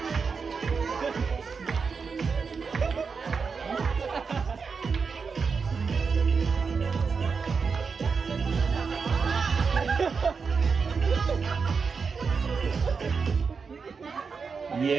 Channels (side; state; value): left; quieter; 5.3 dB